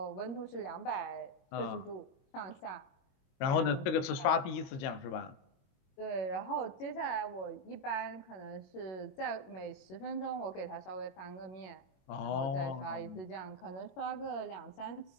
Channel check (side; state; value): right; late; 22 ms